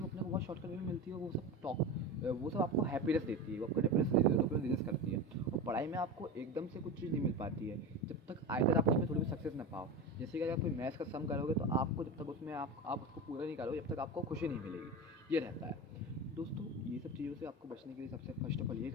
वो अपने को बहुत शॉर्टकट वे में मिलती है। वो सब आपको हैप्पीनेस देती है, वो आपको हैप्पीनेस देती है, डोपामिन रिलीज करती है। और पढ़ाई में आपको एकदम से कुछ चीज़ नहीं मिल पाती है जब तक आइदर आप उसमें थोड़ी भी सक्सेस ना पाओ। जैसे कि अगर आप कोई मैथ्स का सम करोगे तो आपको जब तक उसमें आप उसको पूरा नहीं करोगे, जब तक आपको खुशी नहीं मिलेगी। ये रहता है दोस्तों। ये सब चीज़ों से आपको बचने के लिए सबसे फर्स्ट ऑफ ऑल ये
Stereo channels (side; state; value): both; normal; correlation 0.24